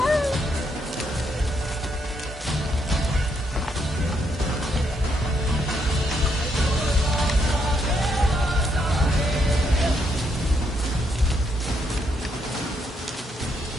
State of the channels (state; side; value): normal; both; correlation 0.76